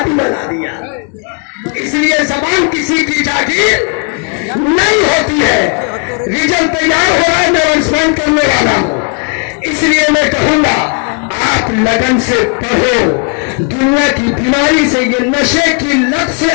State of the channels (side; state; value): right; quieter; 37.3 dB